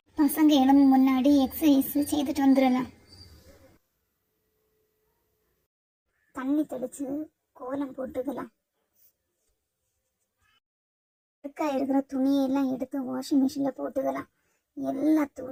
பசங்க எழும்பும் முன்னாடி எக்ஸசைஸ் செய்துட்டு வந்துடலாம். தண்ணி தெளிச்சு கோலம் போட்டுக்கலாம். இருக்கிற துணியெல்லாம் எடுத்து வாஷிங் மிஷின்ல போட்டுக்கலாம். எல்லா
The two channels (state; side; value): identical; both; correlation 1.00